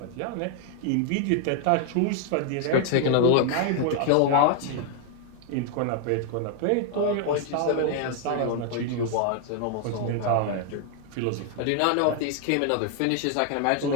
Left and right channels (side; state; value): both; different; correlation 0.00